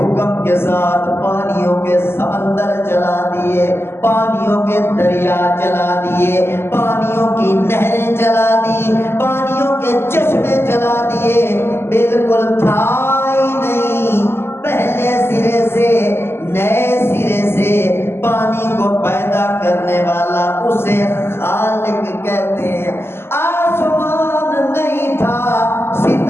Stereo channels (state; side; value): late; right; 0.12 ms